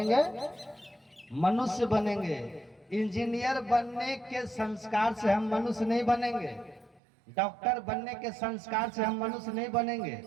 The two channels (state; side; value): drops out; left; at 7.0 s